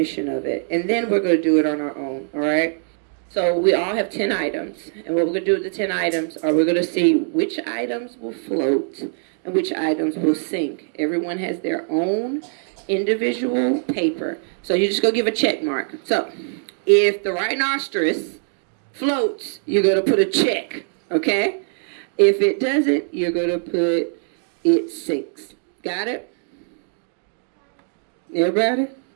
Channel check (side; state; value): left; silent; 64 dB below the other